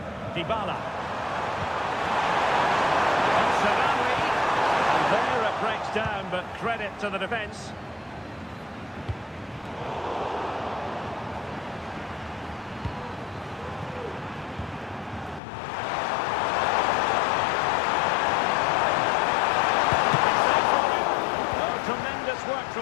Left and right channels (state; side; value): drops out; right; at 15.4 s